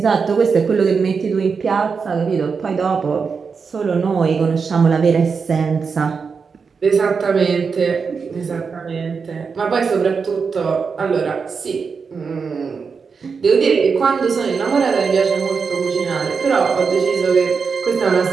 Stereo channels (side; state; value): left; quieter; 5.4 dB